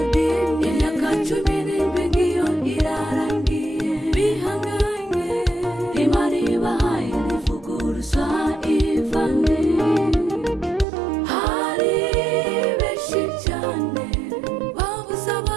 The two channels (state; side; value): drops out; left; at 10.9 s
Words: imyaka 17 ngiyo irarangiye bihanganye Imana ibahaye ntivuguruza Ivane hari benshi cyane babuze